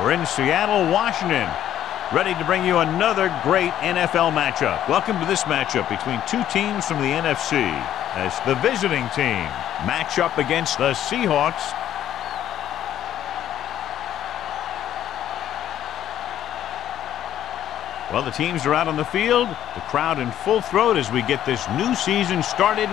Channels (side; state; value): right; quieter; 11.4 dB